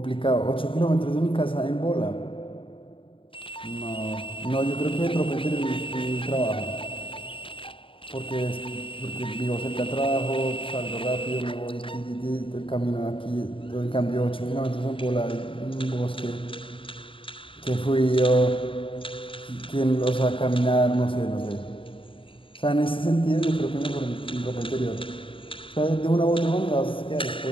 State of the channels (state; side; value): late; right; 0.25 ms